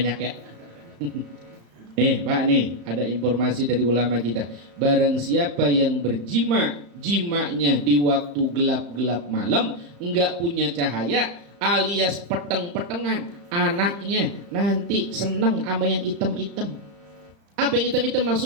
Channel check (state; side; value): late; left; 35 ms